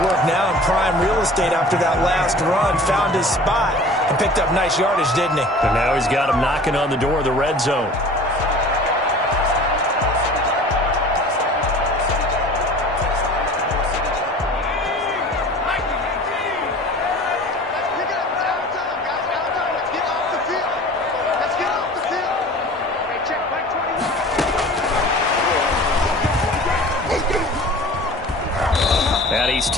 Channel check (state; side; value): normal; both; correlation 0.43